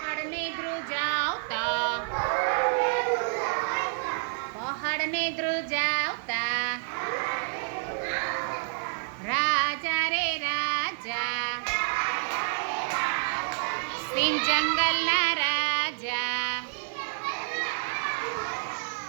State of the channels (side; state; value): left; silent; digital silence